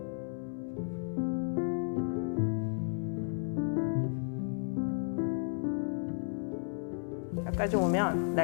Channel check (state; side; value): silent; right; 55 dB below the other